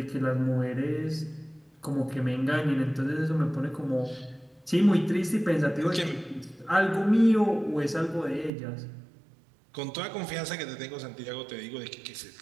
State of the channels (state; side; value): drops out; left; at 8.5 s